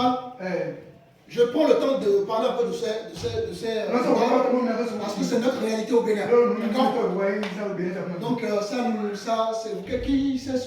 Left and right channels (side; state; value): both; identical; correlation 1.00